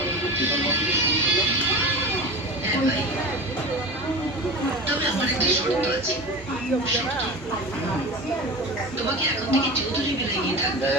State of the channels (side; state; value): both; normal; correlation 0.31